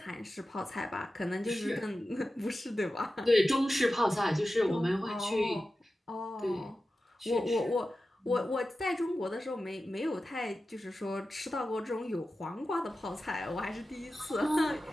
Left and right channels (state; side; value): normal; both; correlation 0.93